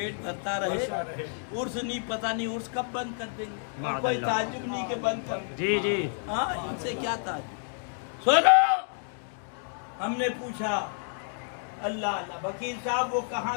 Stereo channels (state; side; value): silent; right; 58 dB below the other